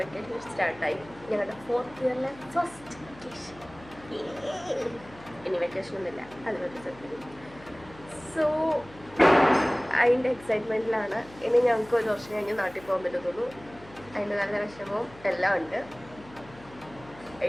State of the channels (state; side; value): noise; left; hum, 21 dB below the sound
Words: വെക്കേഷൻ സ്റ്റാർട്ടായി. ഞങ്ങളുടെ 4th ഇയറിലെ ഫസ്റ്റ് വെക്കേഷൻ. ഇനി വെക്കേഷനൊന്നുമില്ല, അതിനൊരു സെക്കൻഡ്. സോ അതിൻ്റെ എക്സൈറ്റ്മെൻറ്റിലാണ്. ഇനി ഞങ്ങൾക്ക് ഒരു വർഷം കഴിഞ്ഞ് നാട്ടിൽ പോകാൻ പറ്റത്തുള്ളൂ. അതിൻ്റെ നല്ല വിഷമവും എല്ലാം ഉണ്ട്.